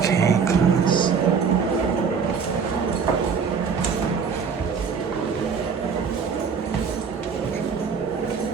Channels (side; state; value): left; quieter; 6.0 dB